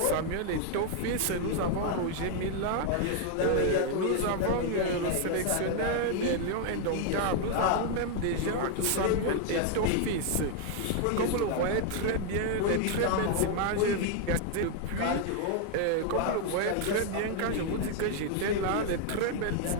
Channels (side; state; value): both; different; correlation 0.00